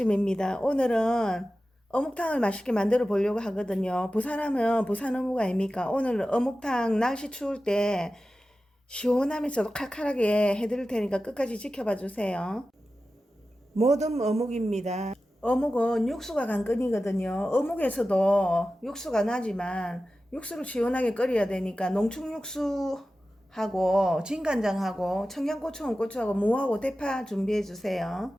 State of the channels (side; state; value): both; normal; correlation 0.94